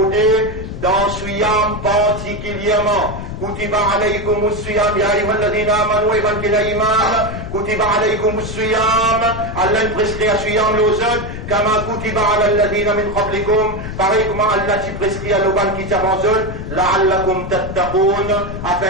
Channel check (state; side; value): noise; left; rumble, 8 dB below the sound